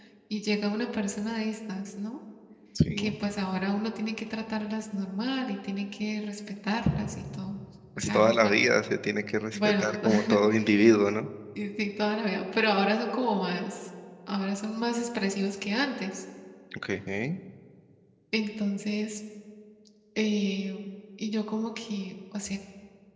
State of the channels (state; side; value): identical; both; correlation 1.00